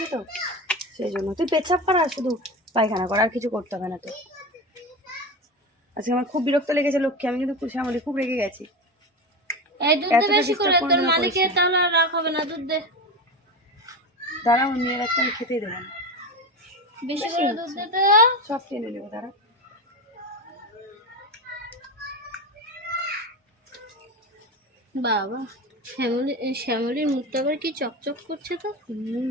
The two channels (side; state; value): both; normal; correlation 0.22